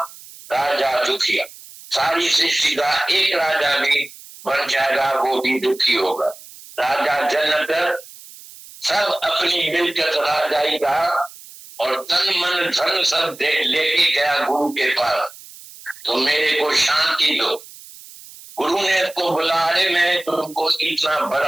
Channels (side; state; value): right; noise; hiss, 19 dB below the sound